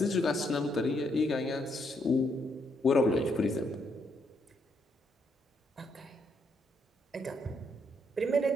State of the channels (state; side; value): normal; both; correlation 0.75